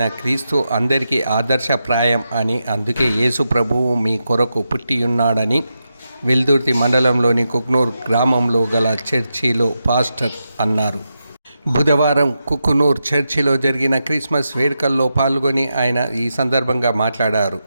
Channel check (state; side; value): inverted; both; correlation -0.87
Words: క్రీస్తు అందరికీ ఆదర్శప్రాయం అని, అందుకే యేసు ప్రభువు మీ కొరకు పుట్టియున్నాడని వెల్దుర్తి మండలంలోని కుక్నూర్ గ్రామంలో గల చర్చిలో పాస్టర్ అన్నారు. బుధవారం కుకునూర్ చర్చిలో జరిగిన క్రిస్మస్ వేడుకల్లో పాల్గొని ఆయన ఈ సందర్భంగా మాట్లాడారు.